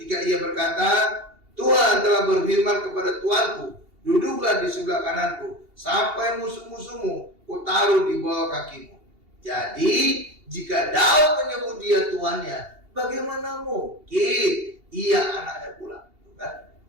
ia berkata, Tuhan telah berfirman kepada Tuanku, duduklah di sebelah kananku, sampai musuh-musuhmu kutaruh di bawah kakimu. Jadi, jika Daud menyebut dia tuannya, bagaimana mungkin ia anaknya pula?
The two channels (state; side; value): late; left; 2.8 ms